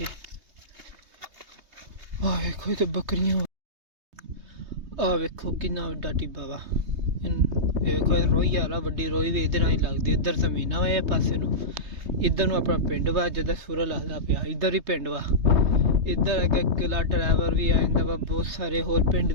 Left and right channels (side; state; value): left; late; 3.2 ms